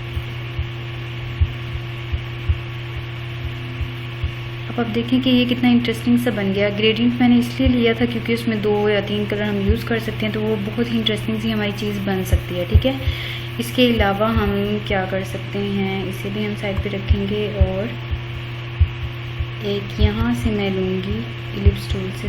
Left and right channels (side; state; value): both; identical; correlation 1.00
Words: अब आप देखें कि ये कितना इंटरेस्टिंग सा बन गया। ग्रेडियंट मैंने इसलिए लिया था क्योंकि उसमें 2 या 3 कलर हम यूज़ कर सकते हैं, तो वो बहुत ही इंटरेस्टिंग सी हमारी चीज़ बन सकती है, ठीक है। इसके अलावा हम क्या कर सकते हैं, इसे भी हम साइड पे रखेंगे और एक यहाँ से मैं लूँगी इलिप्स टूल से